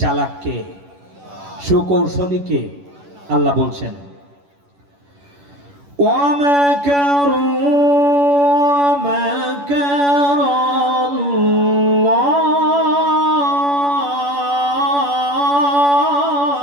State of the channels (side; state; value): left; late; 11 ms